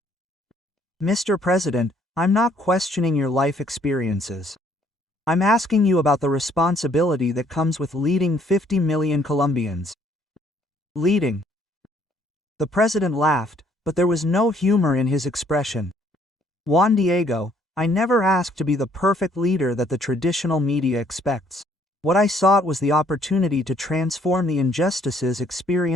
Mr. President, I'm not questioning your life experiences. I'm asking you about the responsibility that comes with leading 50 million Colombians. Leading. The president laughed, but there was no humor in his expression. Juan Diego, I never asked to be the perfect leader that the traditional media expects. What I sought was the opportunity to transform the injustices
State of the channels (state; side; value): normal; both; correlation 0.64